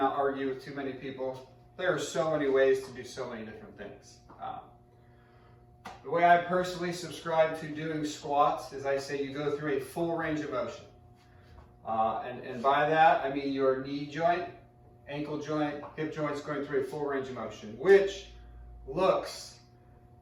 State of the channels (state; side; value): identical; both; correlation 1.00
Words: argue with too many people. There are so many ways to do so many different things. The way I personally subscribe to doing squats is I say you go through a full range of motion. And by that, I mean your knee joint, ankle joint, hip joints going through a full range of motion, which looks